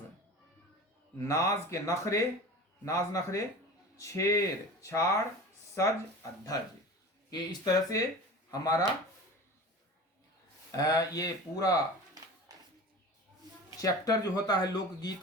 नाज के नखरे, नाज नखरे, छेर छाड़, सज अधज। ये इस तरह से हमारा ये पूरा चैप्टर जो होता है लोकगीत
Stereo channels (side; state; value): both; normal; correlation 0.35